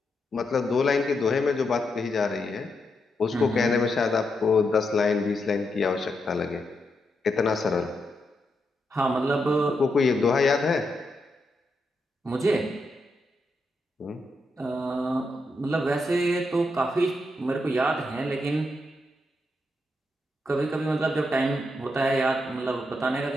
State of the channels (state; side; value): normal; both; correlation 0.83